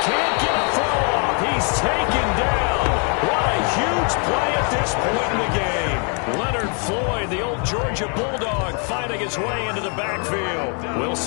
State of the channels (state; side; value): quieter; right; 39.4 dB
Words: can't get a throw off. He's taken down. What a huge play at this point in the game. Leonard Floyd, the old Georgia Bulldog, finding his way into the backfield.